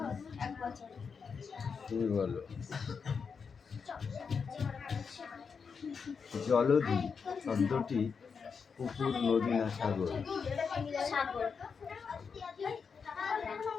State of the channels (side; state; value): right; quieter; 5.8 dB